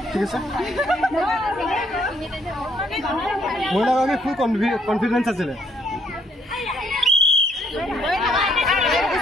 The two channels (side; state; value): both; normal; correlation 0.69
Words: ঠিক আছে মহিলাগৰাকী ফুল কনফিডেন্স আছিলে